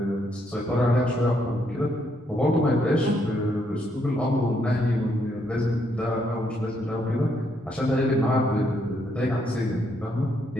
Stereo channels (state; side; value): normal; both; correlation 0.74